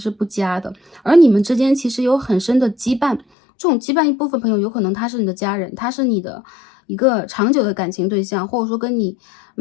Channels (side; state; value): right; drops out; at 3.2 s